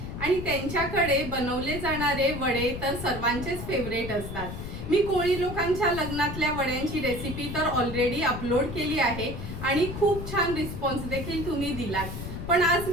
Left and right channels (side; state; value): left; noise; rumble, 8 dB below the sound